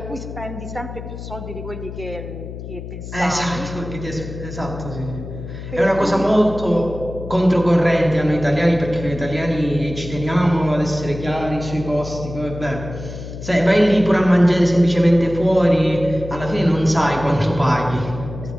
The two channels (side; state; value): left; noise; hum, 10 dB below the sound